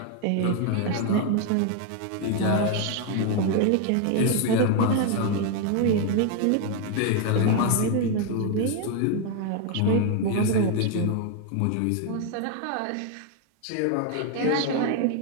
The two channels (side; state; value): both; different; correlation 0.01